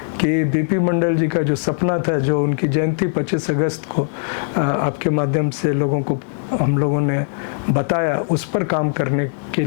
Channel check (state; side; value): silent; right; 63 dB below the other